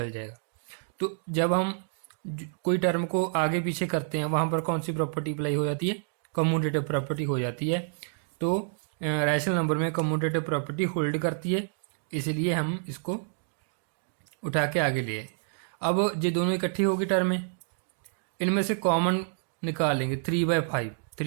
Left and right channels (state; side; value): silent; left; digital silence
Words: जाएगा। तो जब हम कोई टर्म को आगे पीछे करते हैं वहां पर कौन सी प्रॉपर्टी अप्लाई हो जाती है, कम्यूटेटिव प्रॉपर्टी हो जाती है। तो रैशनल नंबर में कम्यूटेटिव प्रॉपर्टी होल्ड करती है, इसलिए हम इसको उठा के आगे लिए। अब ये दोनों इकट्ठी होगी टर्म में, इनमें से कॉमन निकालेंगे